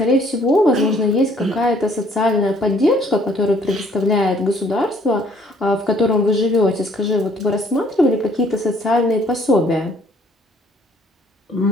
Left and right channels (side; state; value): both; normal; correlation 0.61